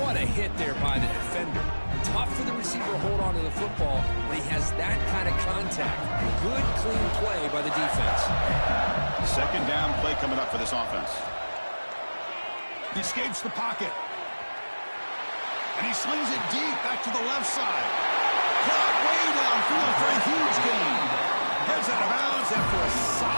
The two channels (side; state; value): both; inverted; correlation -1.00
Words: a hit there by the defender. Tough for the receiver to hold on to the football when he has that kind of contact. Good, clean play by the defense. Second down play coming up for this offense. He escapes the pocket. And he slings it deep back to the left side. Caught way downfield for a huge gain. Heads out of bounds after a